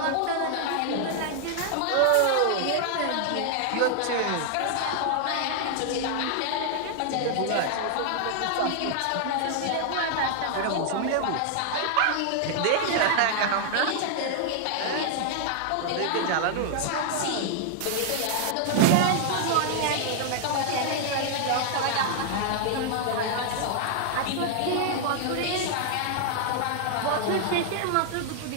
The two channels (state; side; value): different; both; correlation 0.00